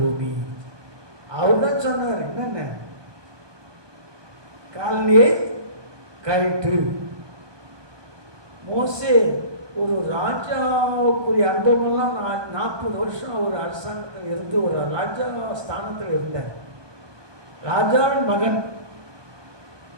அவர் தான் சொன்னார், என்னென்ன காலனியை கயிற்று. மோசே ஒரு ராஜாவுக்குரிய அனுபவம்லாம் 40 வருஷம் ஒரு அரசாங்கத்தில் இருந்து ஒரு ராஜா ஸ்தானத்தில் இருந்தார். ராஜாவின் மகன்,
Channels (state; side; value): late; left; 1.2 ms